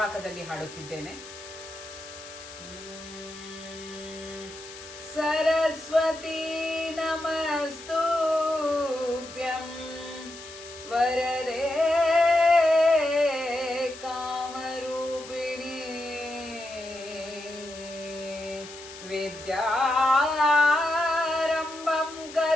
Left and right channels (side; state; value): left; noise; hiss, 15 dB below the sound